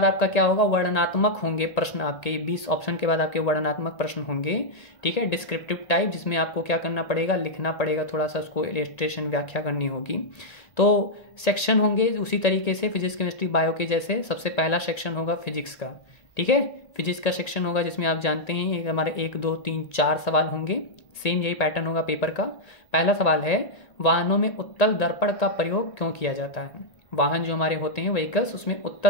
आपका क्या होगा? वर्णनात्मक होंगे प्रश्न आपके। 20 ऑप्शन के बाद आपके वर्णनात्मक प्रश्न होंगे। ठीक है, डिस्क्रिप्टिव टाइप, जिसमें आपको क्या करना पड़ेगा? लिखना पड़ेगा, थोड़ा सा उसको इलस्ट्रेशन व्याख्या करनी होगी। तो सेक्शन होंगे उसी तरीके से फिजिक्स, केमिस्ट्री, बायो के जैसे। सबसे पहला सेक्शन होगा फिजिक्स का। ठीक है, फिजिक्स का सेक्शन होगा जिसमें आप जानते हैं ये हमारे 1, 2, 3, 4 सवाल होंगे। सेम यही पैटर्न होगा पेपर का। पहला सवाल है, वाहनों में उत्तल दर्पण का प्रयोग क्यों किया जाता है? वाहन जो हमारे होते हैं व्हीकल्स, उसमें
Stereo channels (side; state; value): right; late; 1.8 ms